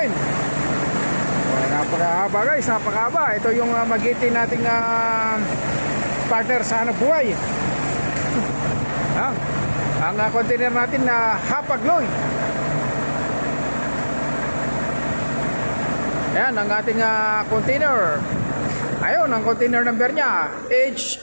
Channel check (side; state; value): both; inverted; correlation -1.00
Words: Napakahaba guys, napakahaba. Ito yung magitin nating partner sa hanap buhay. Ang container natin na Hapag-Lloyd. Ayan ang ating container. Ayun ang container number niya,